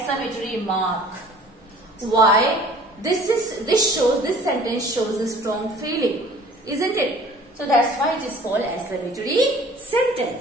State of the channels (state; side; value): normal; both; correlation 0.49